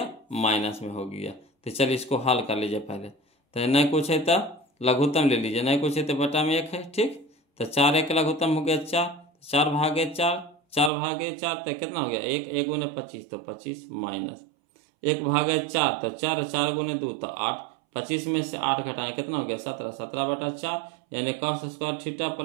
माइनस में हो गया। तो चलिए इसको हल कर लीजिए पहले, तो नहीं कुछ है तो लघुत्तम ले लीजिए, नहीं कुछ है तो बटा में 1 है। ठीक। तो 4 1 लघुत्तम हो गया 4, 4 भागे 4, 4 भागे 4 तो कितना हो गया 1, 1 गुने 25 तो 25 माइनस 1 भागे 4 तो 4, 4 गुने 2 तो 8, 25 में से 8 घटाएं कितना हो गया 17, 17/4, यानी cos square theta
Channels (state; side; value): drops out; left; at 10.9 s